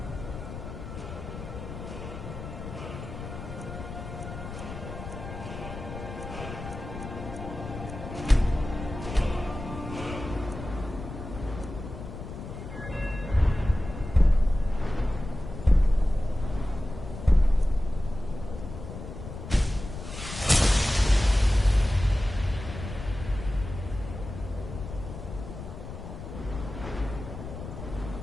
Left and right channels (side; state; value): left; noise; rumble, 10 dB below the sound